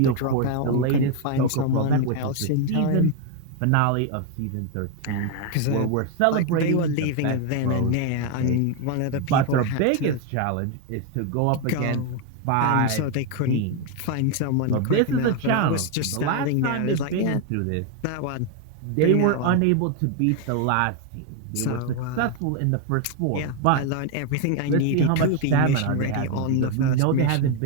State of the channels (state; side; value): different; both; correlation 0.01